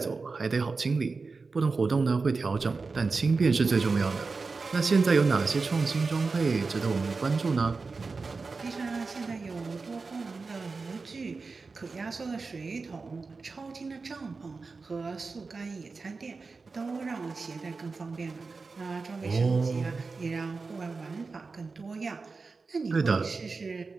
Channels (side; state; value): left; quieter; 4.2 dB